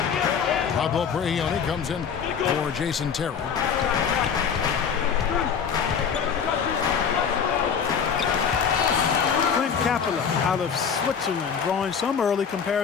Pablo Prigioni comes in for Jason Terry. Capella out of Switzerland, drawing some early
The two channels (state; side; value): quieter; right; 6.9 dB